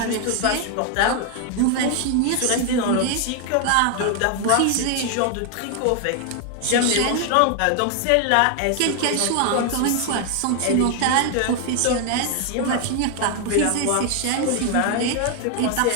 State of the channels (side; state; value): both; different; correlation 0.00